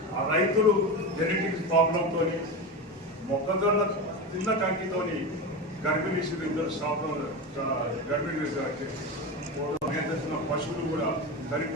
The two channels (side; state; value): both; normal; correlation 0.21